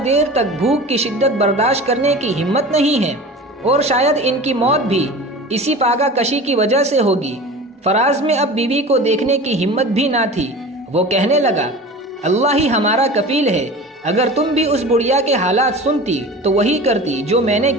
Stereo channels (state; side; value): normal; both; correlation 0.35